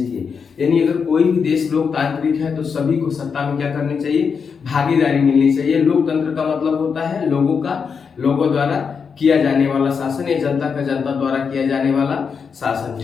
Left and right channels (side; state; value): right; quieter; 6.0 dB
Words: यानी अगर कोई भी देश लोकतांत्रिक है तो सभी को सत्ता में क्या करनी चाहिए, भागीदारी मिलनी चाहिए। लोकतंत्र का मतलब होता है लोगों द्वारा किया जाने वाला शासन, या जनता का जनता द्वारा किया जाने वाला शासन।